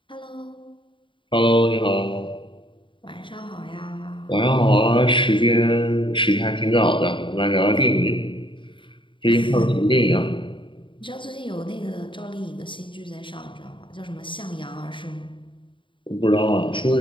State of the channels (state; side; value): late; right; 0.24 ms